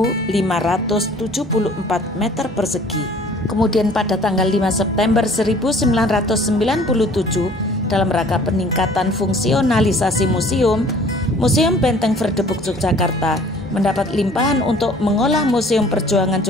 meter persegi. Kemudian pada tanggal 5 September 1997, dalam rangka peningkatan fungsionalisasi museum, Museum Benteng Vredenburg Yogyakarta mendapat limpahan untuk mengolah Museum Perjuangan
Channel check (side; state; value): left; noise; hum, 27 dB below the sound